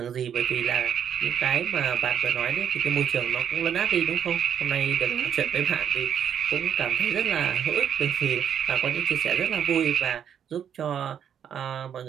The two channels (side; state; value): left; quieter; 8.7 dB